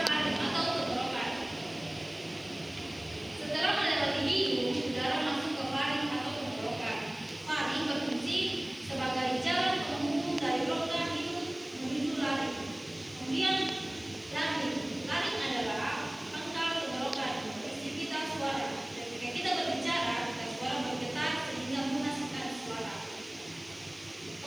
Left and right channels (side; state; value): left; noise; hiss, 25 dB below the sound